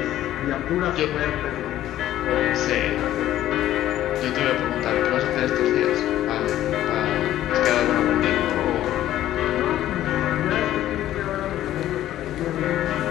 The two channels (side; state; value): right; quieter; 13.1 dB